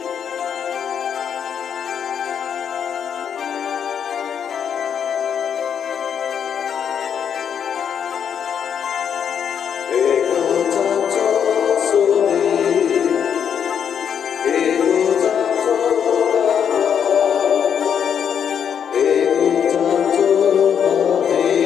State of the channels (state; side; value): quieter; right; 8.0 dB